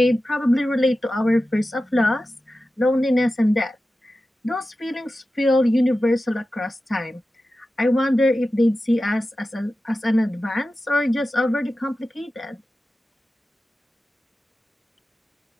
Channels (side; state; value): both; normal; correlation 0.94